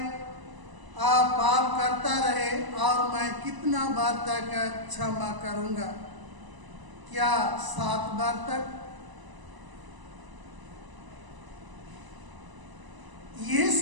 पाप करता रहे और मैं कितना बार तक क्षमा करूंगा? क्या 7 बार तक?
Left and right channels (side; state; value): left; late; 1.0 ms